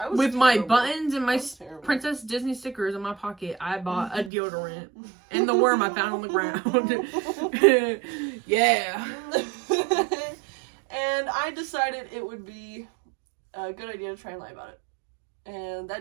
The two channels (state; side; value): drops out; left; at 4.3 s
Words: was with my buttons and my Princess Disney stickers in my pocket, I bought a deodorant and the worm I found on the ground. Yeah. And I decided it would be a good idea to try and lie about it. And